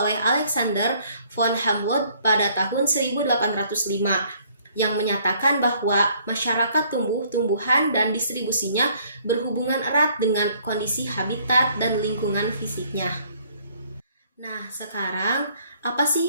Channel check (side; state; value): both; inverted; correlation -0.62